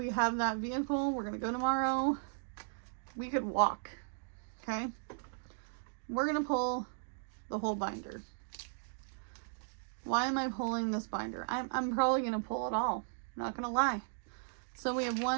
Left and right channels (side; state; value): left; silent; digital silence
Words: vehicle. We're gonna go tomorrow. We could walk. Okay, we're gonna pull the whole binder. Why am I pulling this binder? I'm probably gonna pull it all. Not gonna lie. So we have